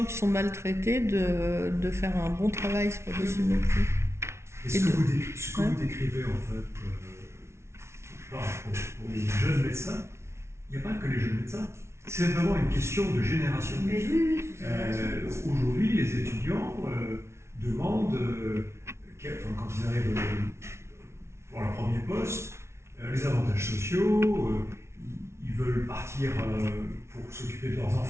qui sont maltraités de faire un bon travail, c'est pas possible non plus. Et ce que vous décrivez en fait pour les jeunes médecins, il n'y a pas que les jeunes médecins. C'est vraiment une question de génération. Aujourd'hui, les étudiants demandent, quand ils arrivent pour leur premier poste, les avantages sociaux, ils veulent partir pour s'occuper de leurs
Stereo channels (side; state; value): left; late; 0.13 ms